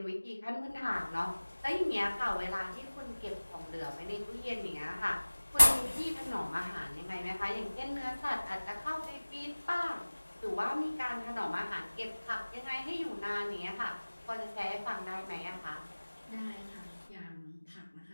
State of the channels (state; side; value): inverted; both; correlation -1.00